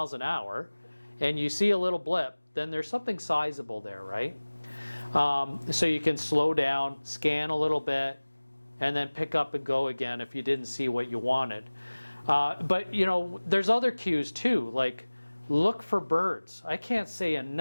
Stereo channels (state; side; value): inverted; both; correlation -1.00